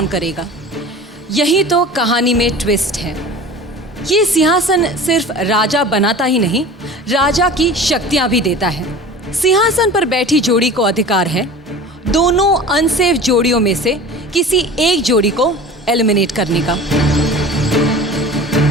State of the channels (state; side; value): normal; both; correlation 0.38